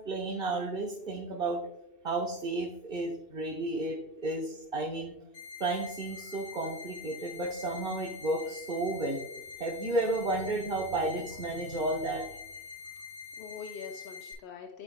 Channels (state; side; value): late; right; 2.6 ms